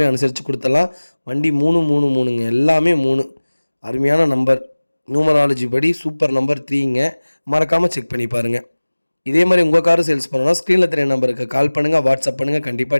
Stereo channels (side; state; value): both; inverted; correlation -1.00